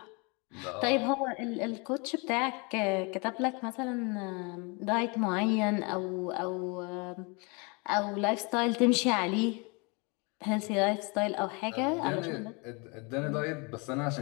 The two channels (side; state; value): right; quieter; 30.4 dB